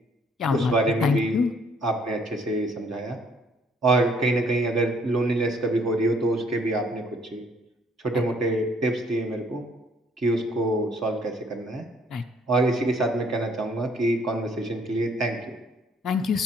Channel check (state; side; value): normal; both; correlation 0.63